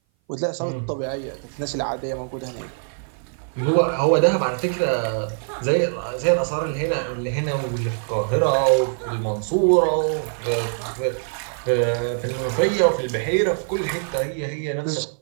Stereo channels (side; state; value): left; silent; 58 dB below the other